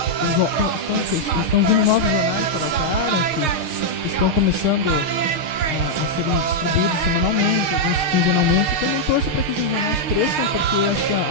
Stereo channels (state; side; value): late; left; 6.4 ms